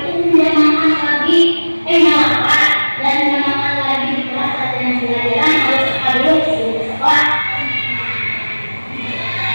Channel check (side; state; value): both; inverted; correlation -1.00